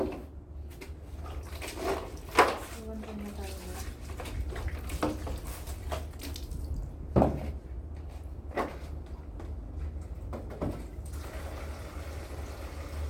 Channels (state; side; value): identical; both; correlation 1.00